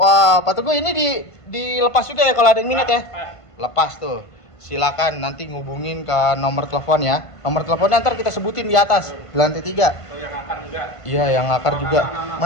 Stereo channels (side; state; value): right; late; 1.5 ms